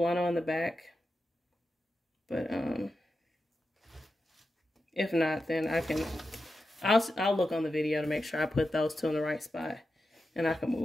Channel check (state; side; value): normal; both; correlation 0.90